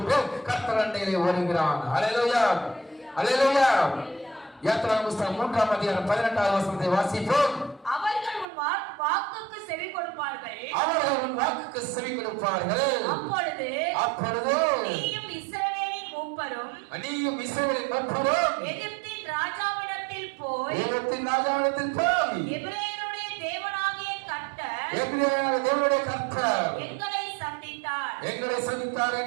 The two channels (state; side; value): drops out; left; at 8.5 s